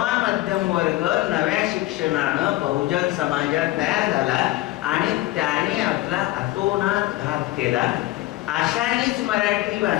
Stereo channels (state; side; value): quieter; right; 17.4 dB